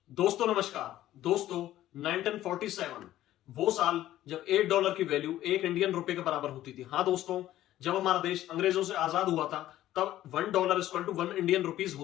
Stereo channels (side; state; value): right; quieter; 13.7 dB